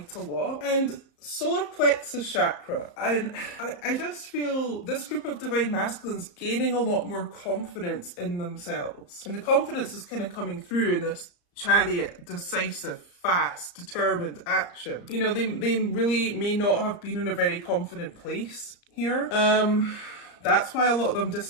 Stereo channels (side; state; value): right; late; 34 ms